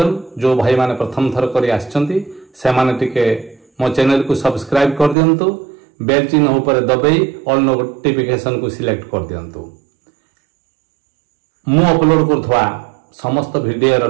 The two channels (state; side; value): drops out; left; at 5.2 s